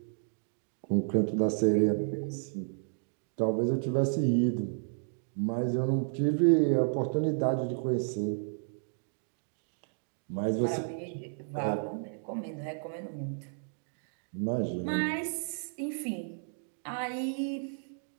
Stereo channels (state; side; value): silent; left; digital silence